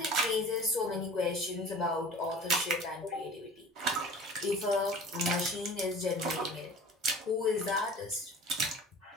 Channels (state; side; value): normal; both; correlation 0.43